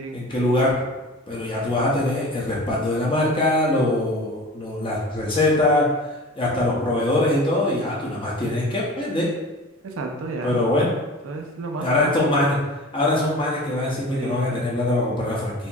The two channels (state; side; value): normal; both; correlation 0.38